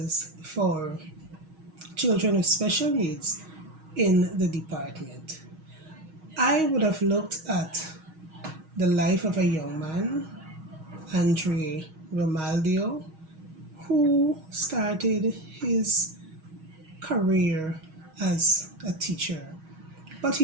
for children with special needs in the department. I would have looked at the life of a young man, Andre Romaldio, who started his career as a teacher. But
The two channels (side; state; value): left; late; 6.3 ms